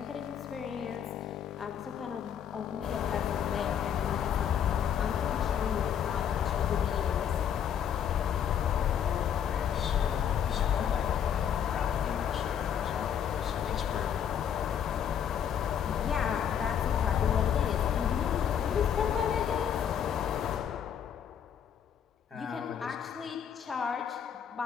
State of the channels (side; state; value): right; quieter; 8.7 dB